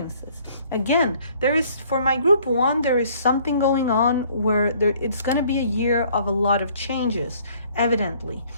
Again, for my group 1, there is something going on where it's going to be a year of a lot of changes, evidently,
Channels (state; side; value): inverted; both; correlation -0.59